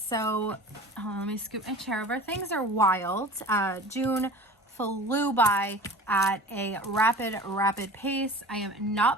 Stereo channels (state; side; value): normal; both; correlation 0.39